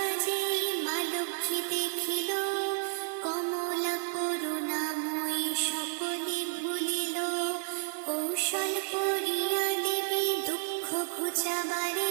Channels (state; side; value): silent; left; digital silence